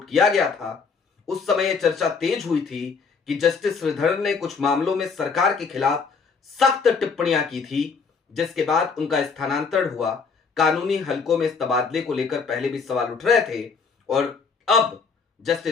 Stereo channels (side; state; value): right; quieter; 5.3 dB